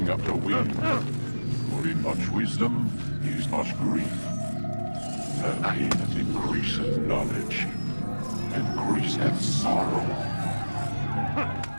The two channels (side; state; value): both; inverted; correlation -1.00